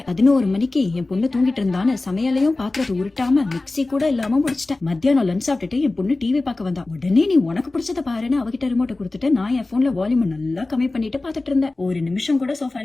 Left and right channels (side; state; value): right; quieter; 3.1 dB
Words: 11 மணிக்கு என் பொண்ணு தூங்கிட்டு இருந்தான்னு சமையலையும் பாத்திரத்தை உருட்டாம மிக்ஸி கூட இல்லாம முடிச்சிட்டேன். மத்தியானம் லஞ்ச் சாப்பிட்டுட்டு என் பொண்ணு டிவி பார்க்க வந்தா. உடனே நீ உனக்கு பிடிச்சத பாருன்னு அவகிட்ட ரிமோட்டை கொடுத்துட்டு நான் என் போன்ல வால்யூம் நல்லா கம்மி பண்ணிட்டு பாத்துட்டு இருந்தேன். ஒரு நிமிஷம் கூட